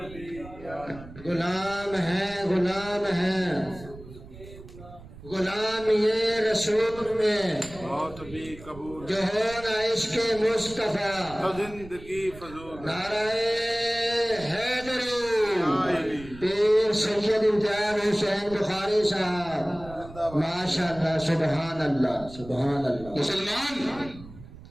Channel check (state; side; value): noise; right; rumble, 17 dB below the sound